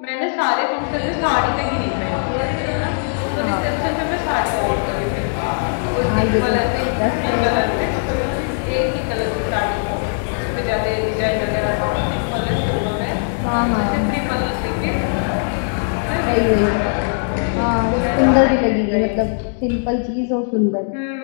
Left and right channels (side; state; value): right; silent; digital silence